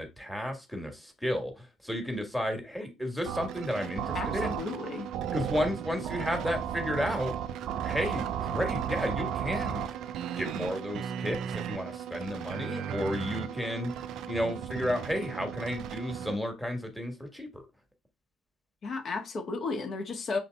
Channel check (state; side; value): normal; both; correlation 0.76